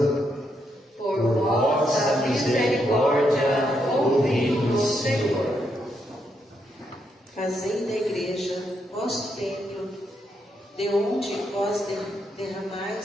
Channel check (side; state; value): both; normal; correlation 0.79